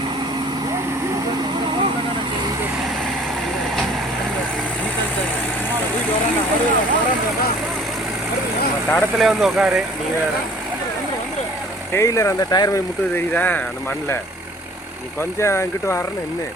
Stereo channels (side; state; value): both; normal; correlation 0.52